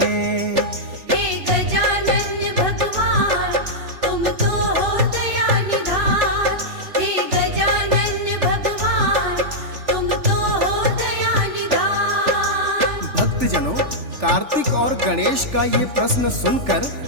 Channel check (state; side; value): late; left; 3.4 ms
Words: हैं। हे गजानन भगवान तुम तो हो दया निधान। हे गजानन भगवान तुम तो हो दया निधान। भक्तजनों, कार्तिक और गणेश का ये प्रश्न सुनकर